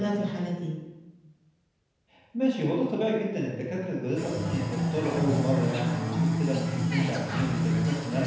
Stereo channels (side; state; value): both; identical; correlation 1.00